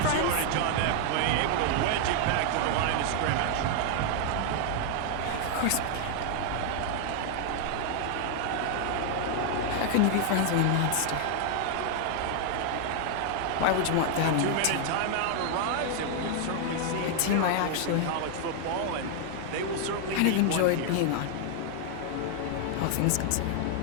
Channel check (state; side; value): different; both; correlation 0.00